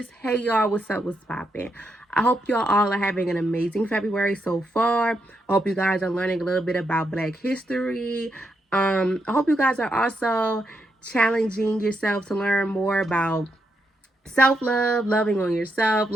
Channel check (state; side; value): normal; both; correlation 0.81